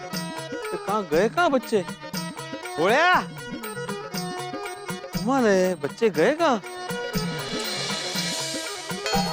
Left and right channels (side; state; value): both; identical; correlation 1.00